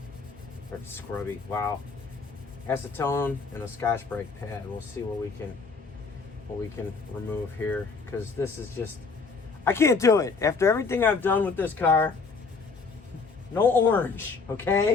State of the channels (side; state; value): right; quieter; 4.6 dB